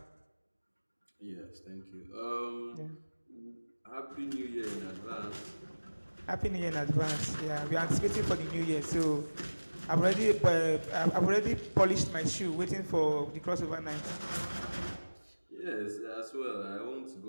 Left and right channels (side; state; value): both; inverted; correlation -1.00